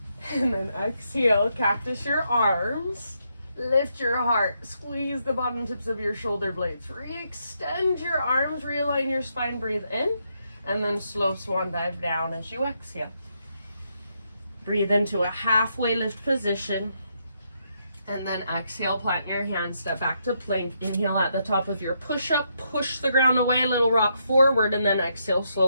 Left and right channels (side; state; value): both; inverted; correlation -0.78